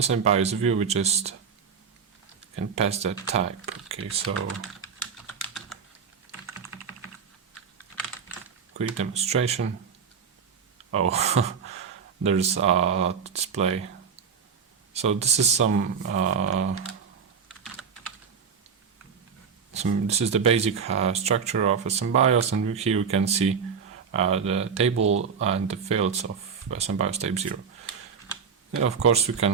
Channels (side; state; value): left; quieter; 6.5 dB